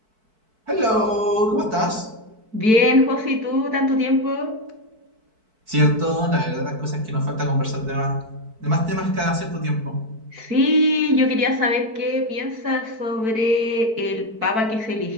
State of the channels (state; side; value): late; left; 4.6 ms